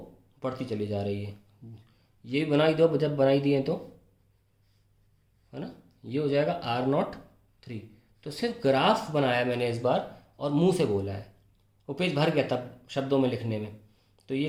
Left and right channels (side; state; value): both; identical; correlation 1.00